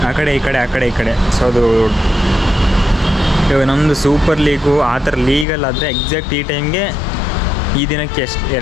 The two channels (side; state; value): right; drops out; at 5.5 s